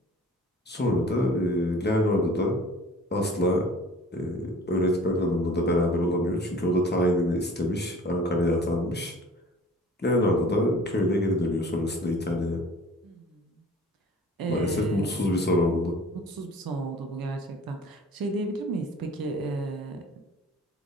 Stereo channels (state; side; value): normal; both; correlation 0.47